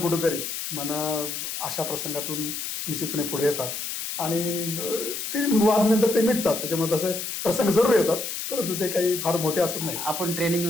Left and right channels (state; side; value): noise; left; hiss, 5 dB below the sound